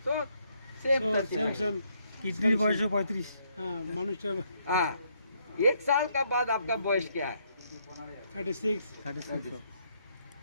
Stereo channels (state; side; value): inverted; both; correlation -0.72